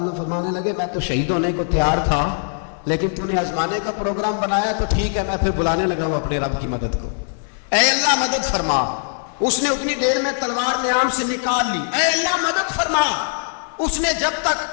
فرمانے لگے میں تو شہید ہونے کو تیار تھا، لیکن تو نے آزمانے کا پروگرام بنایا تو ٹھیک ہے، میں پھر بلانے لگا ہوں اپنے رب کی مدد کو۔ اے اللہ مدد فرما۔ اس نے اتنی دیر میں تلوار نیام سے نکال لی، اے اللہ مدد فرما۔ اس نے جب تک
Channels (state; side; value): silent; right; 65 dB below the other